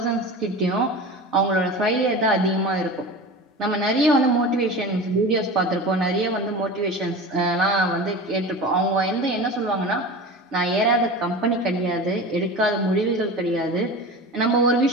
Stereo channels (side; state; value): both; normal; correlation 0.32